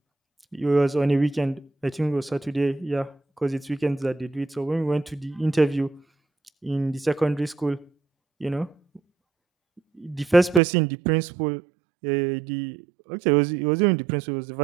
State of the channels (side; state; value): left; drops out; at 10.6 s